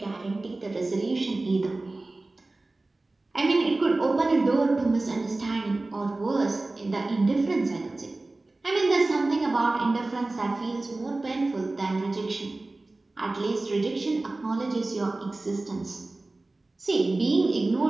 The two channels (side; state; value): left; quieter; 3.0 dB